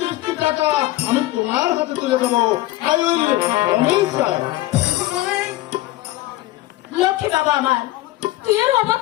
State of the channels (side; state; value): right; quieter; 17.1 dB